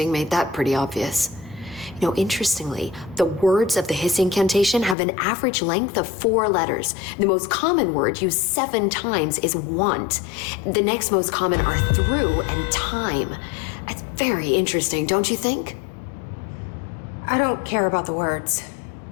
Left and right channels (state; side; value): drops out; right; at 5.0 s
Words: made that pretty obvious. You know, interestingly, the words of the Hiss incantation have an average length of 4 letters. The most common word used 7 times is want. The next most common are through and time. It's very interesting, don't you think? I don't care about the words.